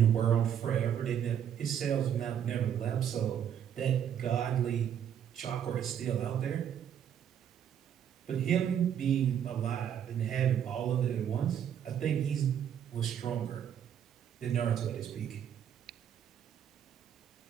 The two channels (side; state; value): left; quieter; 9.2 dB